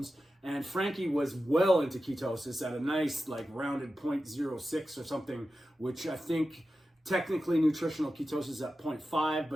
and Frankie was well into ketosis at a nice rounded 0.06 or something, which I think technically nutritional ketosis is at 0.5,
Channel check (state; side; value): normal; both; correlation 0.92